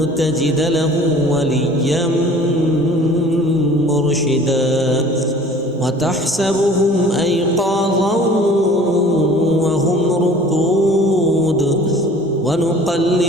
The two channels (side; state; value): both; normal; correlation 0.48